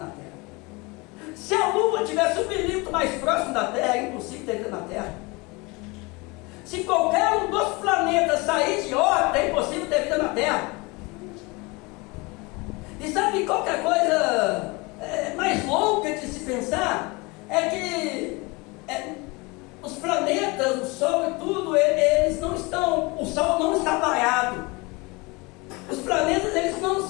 Terra. Se a Lua estivesse 1 milímetro mais próximo da Terra, é impossível ter vida na Terra. Se qualquer um dos planetas sair de órbita, é impossível ter vida na Terra. E sabe qual que é a coisa mais louca de se pensar? É que os planetas, o Sol e tudo, eles não estão, o Sol não está parado. Os planetas, eles não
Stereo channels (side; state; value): right; quieter; 26.0 dB